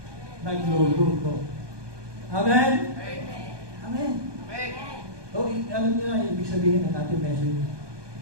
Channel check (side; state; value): left; late; 1.2 ms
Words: Nagluluto. Amen? Amen. So, alam niyo na, ibig sabihin ng ating message.